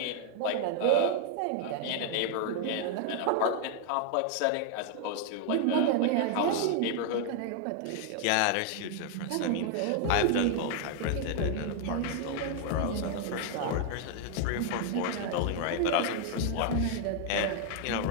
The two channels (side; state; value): both; different; correlation 0.00